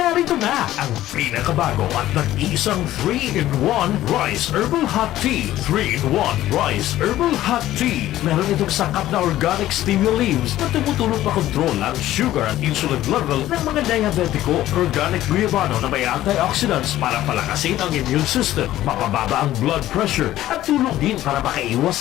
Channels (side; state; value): right; quieter; 14.2 dB